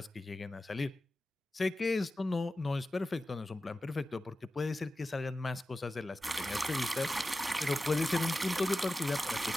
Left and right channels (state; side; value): normal; both; correlation 0.94